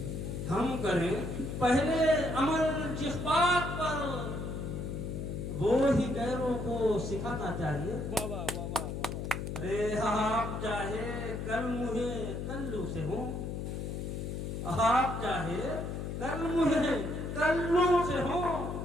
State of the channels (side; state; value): left; noise; hum, 4 dB below the sound